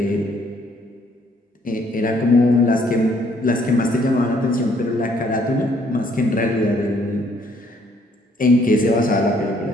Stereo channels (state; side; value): normal; both; correlation 0.65